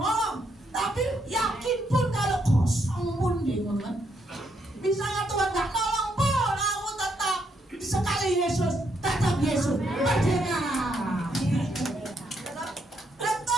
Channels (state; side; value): normal; both; correlation 0.76